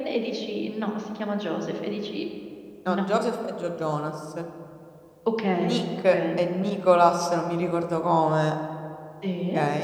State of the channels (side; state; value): both; identical; correlation 1.00